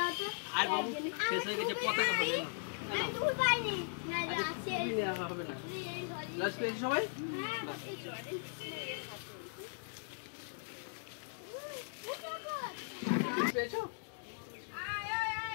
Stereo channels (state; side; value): silent; right; digital silence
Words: তো আর বাবু শেষ হয়ে গেছে পতাকা হবে না আমি তুমি পাইনি আচ্ছা, তুমি নেওয়া হবে না লাস্ট পেয়েছো সবাই হ্যাঁ